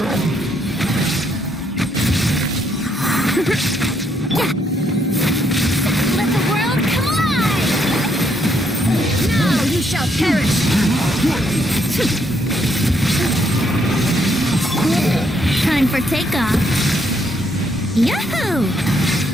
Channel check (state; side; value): normal; both; correlation 0.73